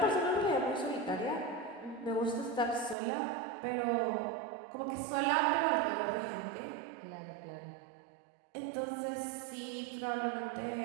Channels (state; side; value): drops out; left; at 3.0 s